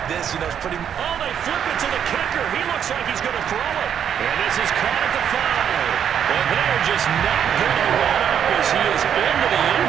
this? You know, it's pretty... Oh, they flip it to the kicker. He looks like he's going to throw it. And this is caught at the 5. And they're just not going to let up as he is into the end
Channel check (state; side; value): quieter; left; 8.6 dB